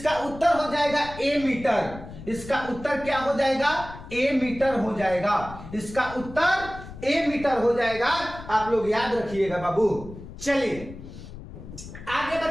उत्तर हो जाएगा ए मीटर। इसका उत्तर क्या हो जाएगा? ए मीटर हो जाएगा। इसका उत्तर ए मीटर हो जाएगा। आप लोग याद रखिएगा बाबू। चलिए आगे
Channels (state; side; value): noise; left; rumble, 14 dB below the sound